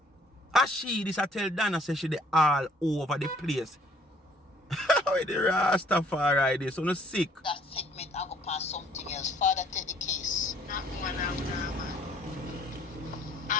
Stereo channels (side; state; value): both; normal; correlation 0.59